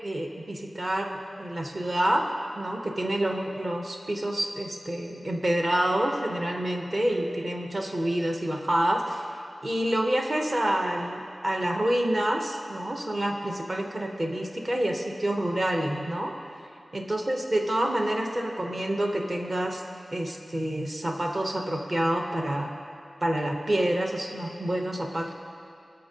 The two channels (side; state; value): both; normal; correlation 0.96